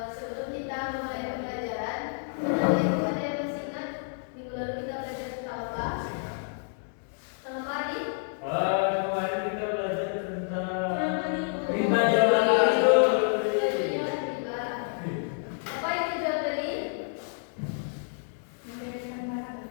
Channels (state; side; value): silent; right; 58 dB below the other